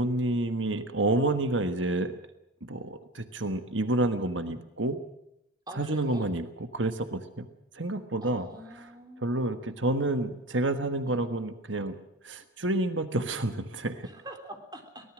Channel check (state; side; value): normal; both; correlation 0.32